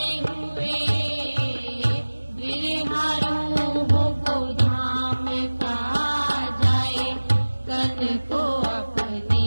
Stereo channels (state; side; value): inverted; both; correlation -1.00